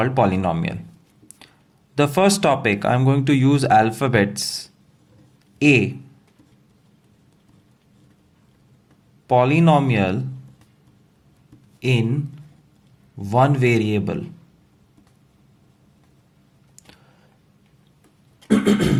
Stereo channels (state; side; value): identical; both; correlation 1.00